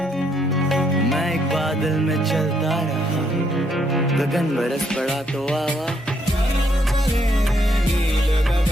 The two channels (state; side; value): normal; both; correlation 0.72